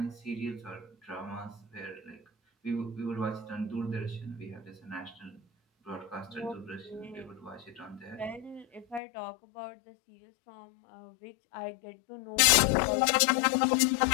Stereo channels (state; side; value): drops out; right; at 9.0 s